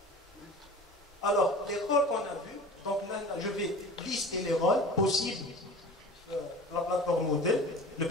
Alors, les rôles qu'on a vus, donc là, je vais lister les rôles possibles la plateforme modèle. Le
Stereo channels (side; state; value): both; normal; correlation 0.36